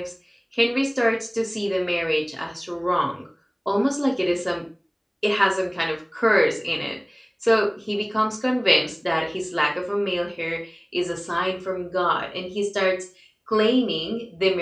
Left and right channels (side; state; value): both; identical; correlation 1.00